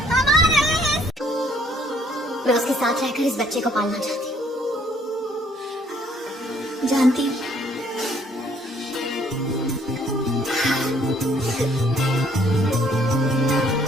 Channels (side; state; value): both; normal; correlation 0.64